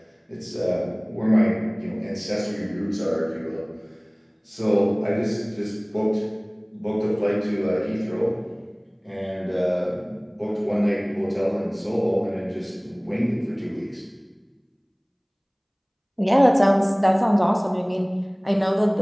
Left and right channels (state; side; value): identical; both; correlation 1.00